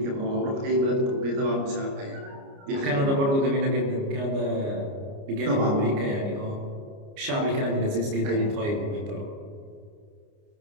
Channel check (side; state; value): left; late; 29 ms